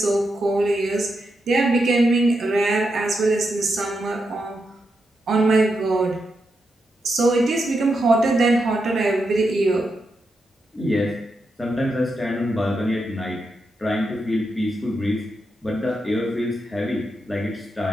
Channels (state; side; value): normal; both; correlation 0.85